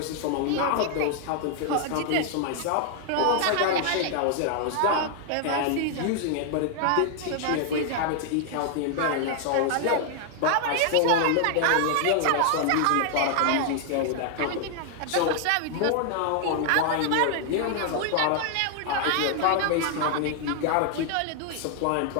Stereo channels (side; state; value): both; different; correlation 0.00